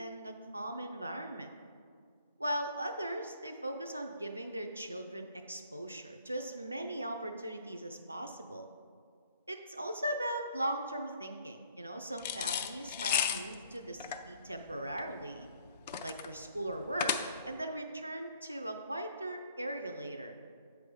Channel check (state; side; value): inverted; both; correlation -0.62